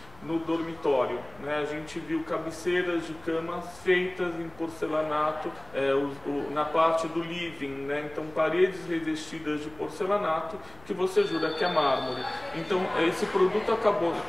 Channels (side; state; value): left; noise; rumble, 24 dB below the sound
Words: no dormitório, né, a gente viu cabeceiras de camas feitas em porcelanato na parte do living, né, então paredes revestidas de porcelanato que você jura que é mármore. Então esse produto acabou